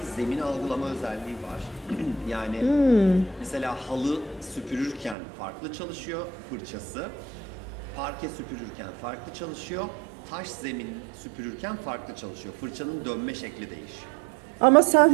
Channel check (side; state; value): left; drops out; at 5.2 s